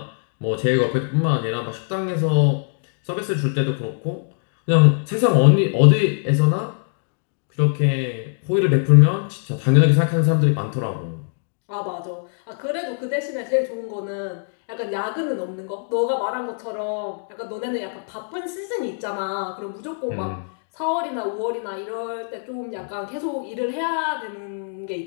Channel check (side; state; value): right; silent; digital silence